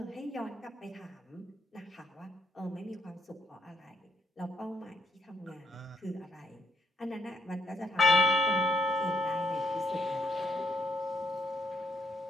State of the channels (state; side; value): normal; both; correlation 0.72